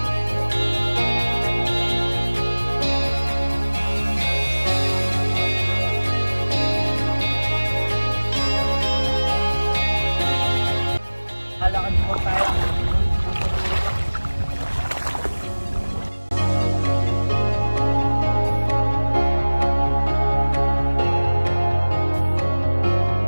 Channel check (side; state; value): both; inverted; correlation -1.00